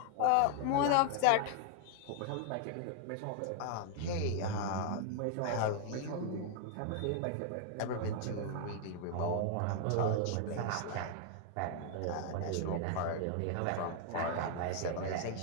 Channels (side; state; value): both; different; correlation 0.00